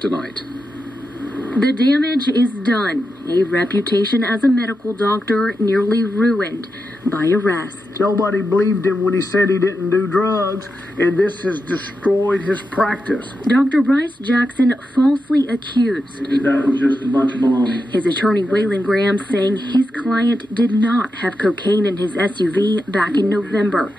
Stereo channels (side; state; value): both; normal; correlation 0.88